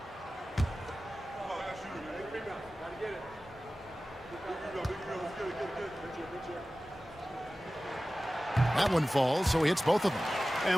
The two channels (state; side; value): normal; both; correlation 0.96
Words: That one falls, so he hits both of them.